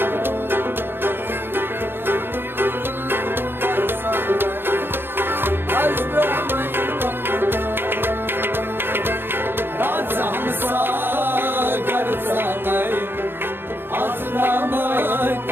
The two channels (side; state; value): left; late; 0.10 ms